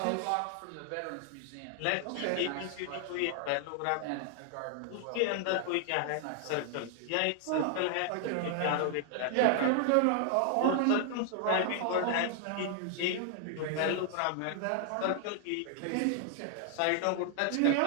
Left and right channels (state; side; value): different; both; correlation 0.00